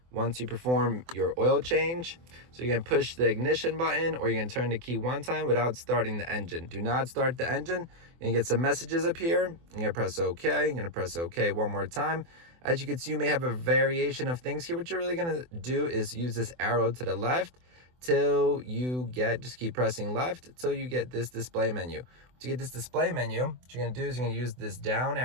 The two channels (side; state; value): left; late; 24 ms